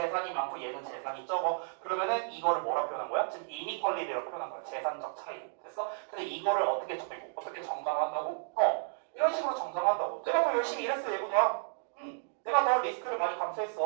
많고 얘는 재산이 적어. 그러면은 이거를 뭐라 표현한 거야? 지금 이니퀄리티라고 표현한 거야. 재산적 차이. 됐어? 근데 이거를 어떻게 정당화한다고? 이런 식으로 정당화한다고. 내가 더 열심히 일했어 얘보다. 내가 더 리스크를 많이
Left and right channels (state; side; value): silent; left; digital silence